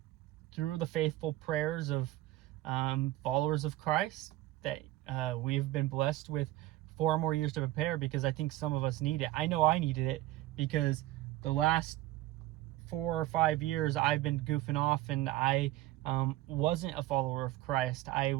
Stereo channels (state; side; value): quieter; left; 16.4 dB